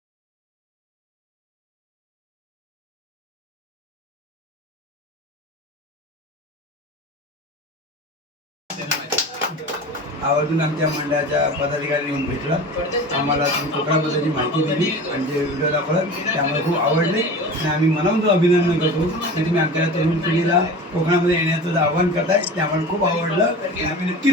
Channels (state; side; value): normal; both; correlation 0.34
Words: आवर्जून आमच्या मंडळाच्या पदाधिकारी येऊन भेटला, आम्हाला तुम्ही कोकणाबद्दलची माहिती दिली आणि जे व्हिडिओ दाखवला त्यामुळे खूप आवडले. आणि आम्ही मनापासून अभिनंदन करतो की तुम्ही आमच्या तरुण पिढीला कोकणामध्ये येण्याचं आव्हान करताय, त्यामुळे खूप आवडलं. आणि आम्ही